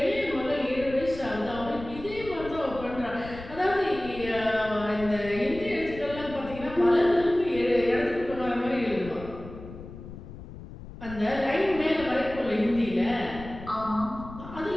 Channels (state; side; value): noise; left; rumble, 14 dB below the sound